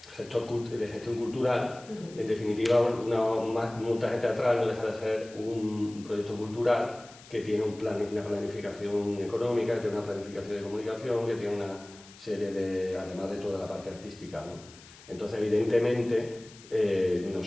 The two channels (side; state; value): left; noise; hiss, 21 dB below the sound